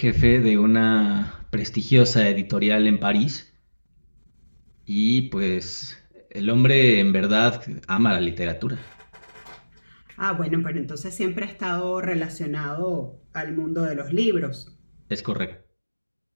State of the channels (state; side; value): inverted; both; correlation -1.00